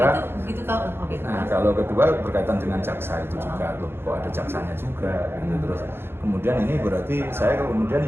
itu begitu tahu. Oke. Nah kalau kedua berkaitan dengan jaksa itu juga loh, kok ada jaksanya juga gitu. Terus kemudian ini berarti saya kemudian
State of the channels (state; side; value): late; left; 0.11 ms